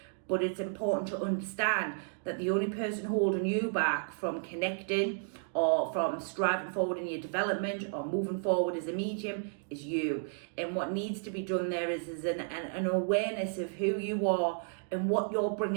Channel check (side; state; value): left; silent; digital silence